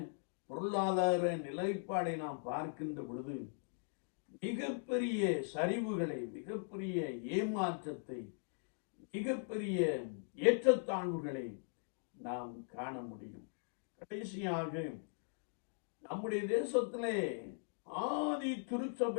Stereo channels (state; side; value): silent; right; digital silence